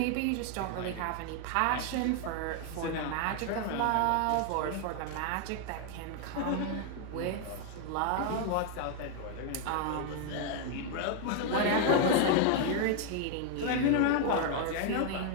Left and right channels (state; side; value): different; both; correlation 0.00